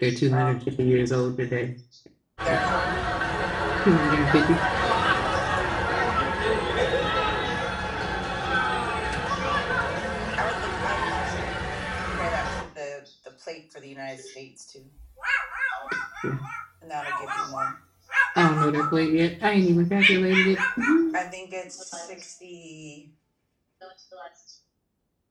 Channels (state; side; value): identical; both; correlation 1.00